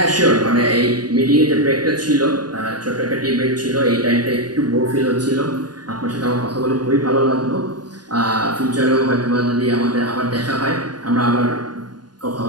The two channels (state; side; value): late; left; 0.70 ms